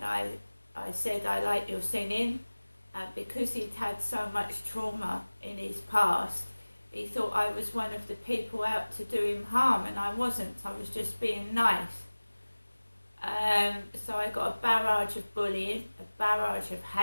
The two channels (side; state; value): both; inverted; correlation -1.00